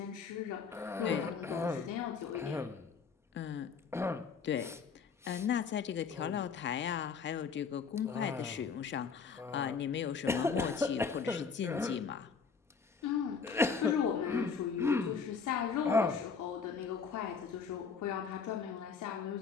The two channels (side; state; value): right; quieter; 5.7 dB